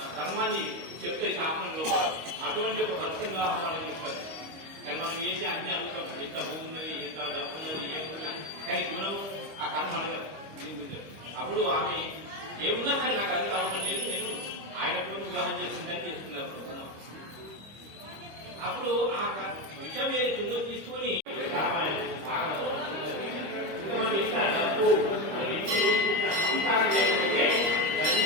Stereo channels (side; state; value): left; late; 25 ms